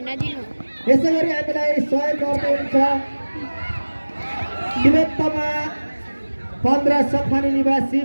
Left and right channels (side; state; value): both; inverted; correlation -1.00